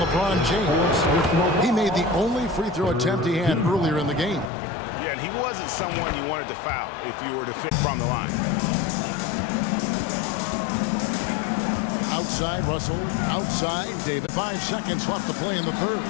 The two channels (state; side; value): drops out; right; at 4.5 s